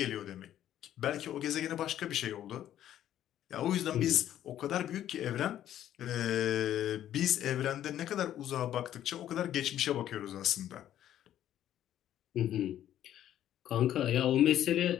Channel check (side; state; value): right; quieter; 11.6 dB